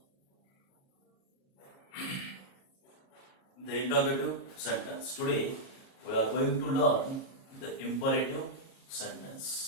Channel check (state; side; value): late; right; 37 ms